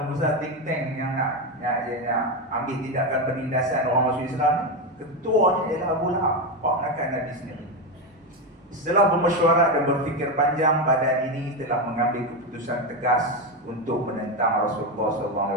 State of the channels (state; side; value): normal; both; correlation 0.12